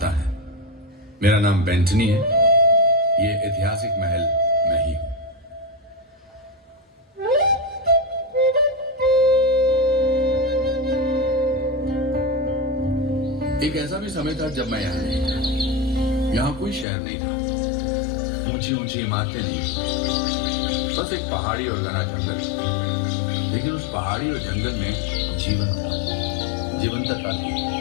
है। मेरा नाम बेंटनी है। ये ऐतिहासिक महल मैं ही हूँ। एक ऐसा भी समय था जब मैं यहाँ नहीं था। यहाँ कोई शहर नहीं था, ऊंची ऊंची इमारतें नहीं, बस एक पहाड़ी और घना जंगल। लेकिन उस पहाड़ी और जंगल में जीवन था, जीवंतता थी,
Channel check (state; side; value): drops out; right; at 16.9 s